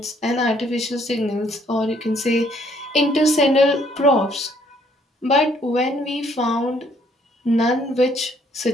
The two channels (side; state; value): both; normal; correlation 0.65